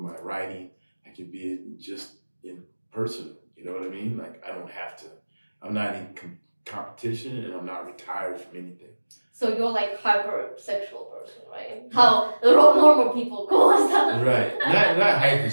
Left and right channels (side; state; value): both; inverted; correlation -1.00